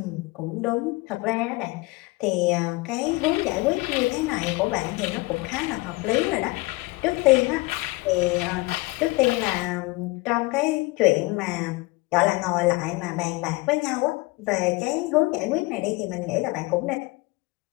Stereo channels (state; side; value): quieter; right; 23.4 dB